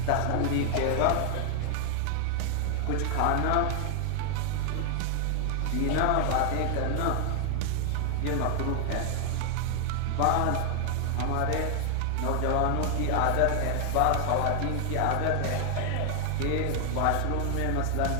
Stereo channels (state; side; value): different; both; correlation 0.00